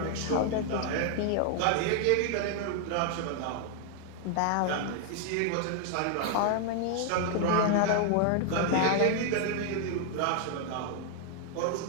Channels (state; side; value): different; both; correlation 0.00